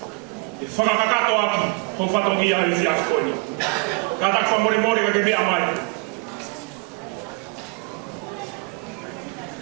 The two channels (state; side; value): quieter; left; 30.0 dB